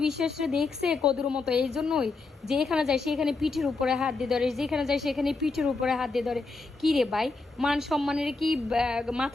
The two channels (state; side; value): quieter; right; 3.8 dB